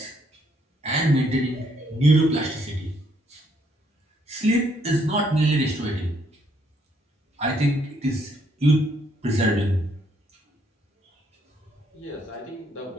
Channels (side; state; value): both; normal; correlation 0.70